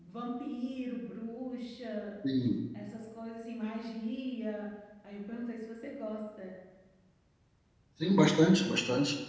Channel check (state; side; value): identical; both; correlation 1.00